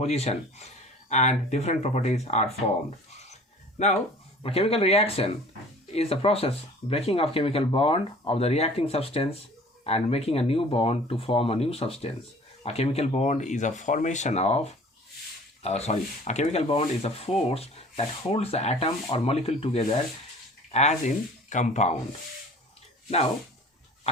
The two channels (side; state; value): both; normal; correlation 0.47